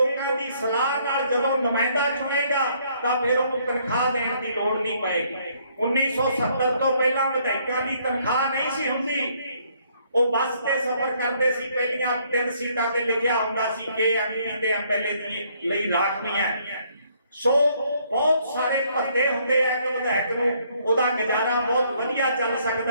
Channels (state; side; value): inverted; both; correlation -0.67